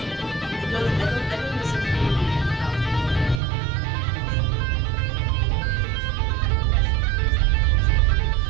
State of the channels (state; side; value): drops out; left; at 3.4 s